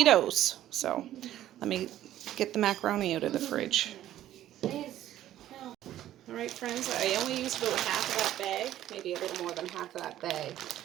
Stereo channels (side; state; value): left; quieter; 12.8 dB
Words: So let me get the macaroni out of the fridge. Alright friends, I only used about half of that bag, maybe a little more than half of that bag.